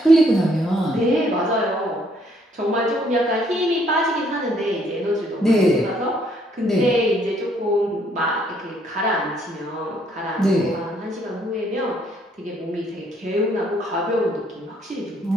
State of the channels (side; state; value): both; normal; correlation 0.67